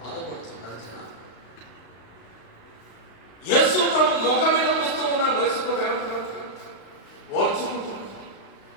జనాలు. యేసు ప్రభు ముఖం మీద వస్తూ ఉన్నాడు. యేసు ప్రభు ఓర్చుకుంటున్నాడు.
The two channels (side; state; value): right; late; 35 ms